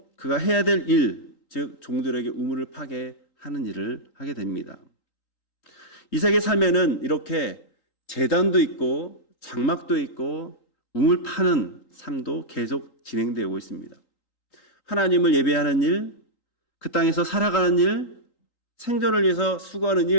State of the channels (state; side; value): late; right; 3.8 ms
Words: 그가 해야 될 일, 즉 종들에게 우물을 파게 하는 일을 하게 됩니다. 이삭의 삶에는 이렇게 제단도 있고 장막도 있고 우물 파는 삶도 계속 진행되고 있습니다. 하나님을 예배하는 일, 그 땅에서 살아가는 일, 생존을 위해서 수고하는